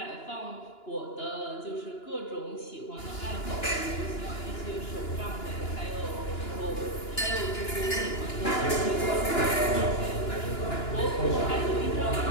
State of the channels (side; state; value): right; late; 2.9 ms